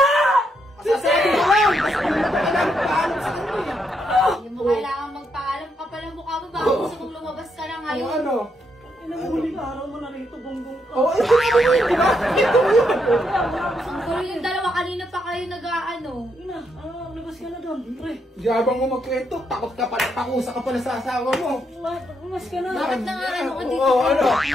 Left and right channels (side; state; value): both; normal; correlation 0.78